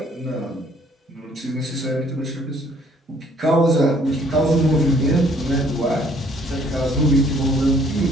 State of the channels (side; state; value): both; normal; correlation 0.61